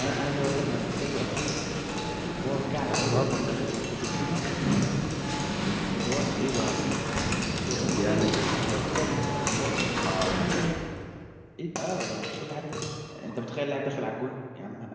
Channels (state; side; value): identical; both; correlation 1.00